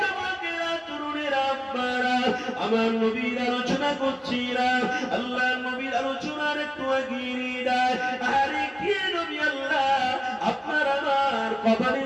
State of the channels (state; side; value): identical; both; correlation 1.00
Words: আমার নবীর আলোচনা করছিলাম, আল্লাহ নবীর আলোচনার একটু এগিয়ে নিয়ে যায়। আরে কে নবী আল্লাহ